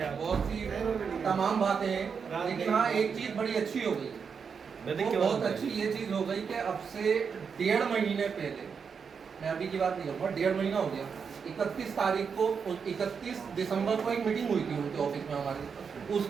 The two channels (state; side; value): quieter; left; 6.1 dB